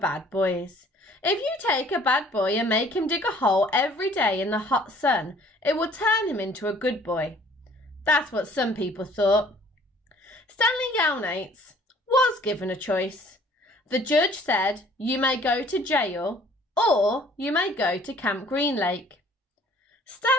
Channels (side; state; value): both; normal; correlation 0.56